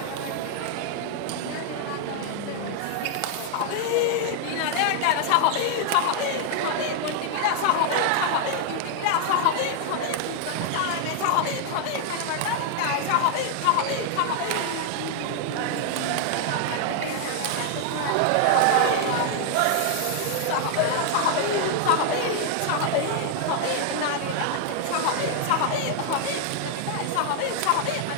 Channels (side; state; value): both; different; correlation 0.00